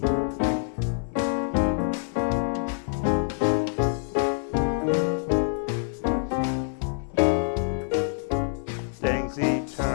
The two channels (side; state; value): right; silent; digital silence